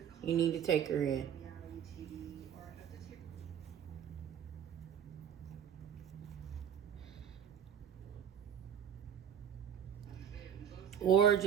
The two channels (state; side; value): quieter; left; 8.9 dB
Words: you need to take her in. Or